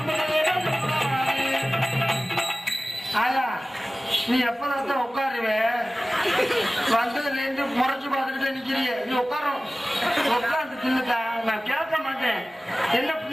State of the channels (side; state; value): both; normal; correlation 0.97